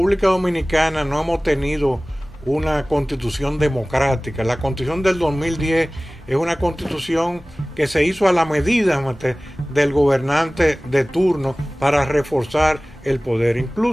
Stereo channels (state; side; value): normal; both; correlation 0.98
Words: Dominicana no hemos tenido una constitución democrática. La constitución del 2010 es una constitución que se hizo a la medida del gobernante de turno para reforzar el poder.